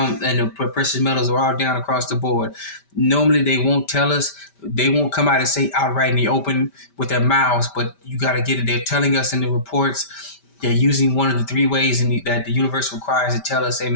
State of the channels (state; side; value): late; right; 5.1 ms